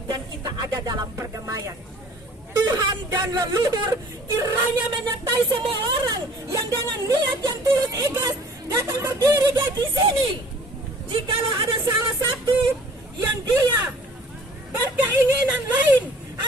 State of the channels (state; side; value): normal; both; correlation 0.51